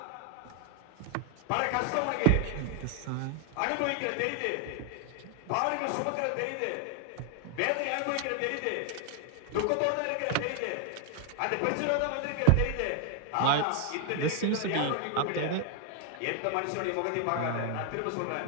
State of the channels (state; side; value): different; both; correlation 0.00